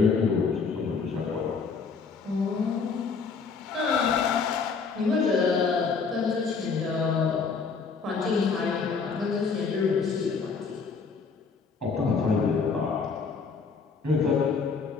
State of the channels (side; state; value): right; quieter; 5.2 dB